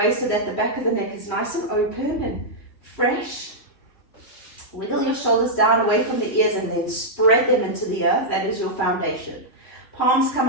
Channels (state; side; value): late; right; 3.2 ms